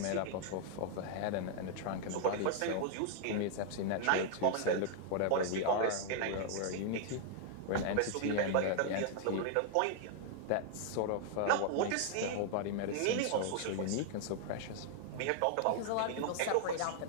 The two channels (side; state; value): both; different; correlation 0.00